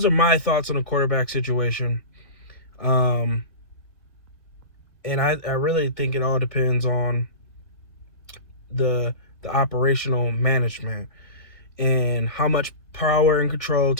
are my thoughts on the quarterback situation. And I really think it all depends on the operational management and how much power and control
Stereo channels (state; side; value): late; right; 1.8 ms